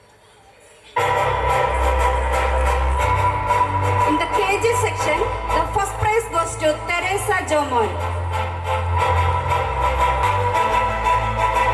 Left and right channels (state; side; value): identical; both; correlation 1.00